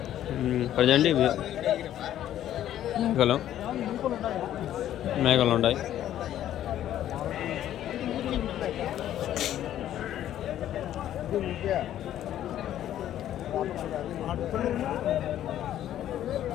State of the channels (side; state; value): right; quieter; 11.8 dB